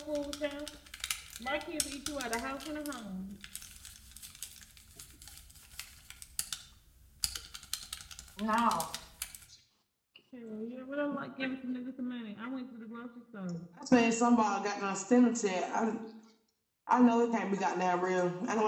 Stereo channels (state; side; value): identical; both; correlation 1.00